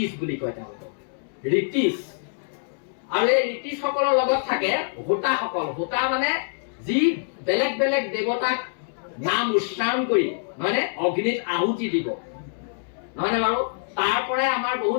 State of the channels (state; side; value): silent; right; digital silence